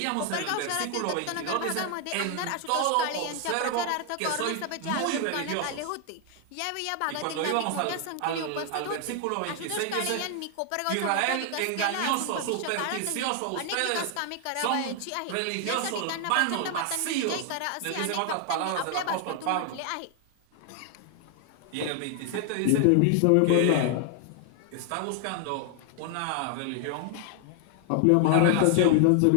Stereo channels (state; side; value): different; both; correlation 0.00